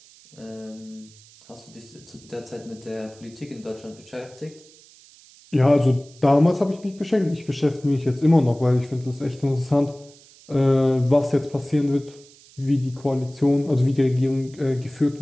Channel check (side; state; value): right; noise; hiss, 25 dB below the sound